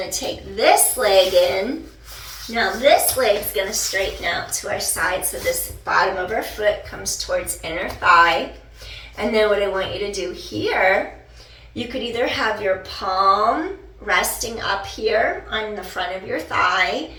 to take this leg in. Now this leg's going to straighten out to our side, so this bottom of our foot comes towards inner thigh. And then what I want you to do here, you could either have your palm resting up here on the front of your thigh,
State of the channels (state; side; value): identical; both; correlation 1.00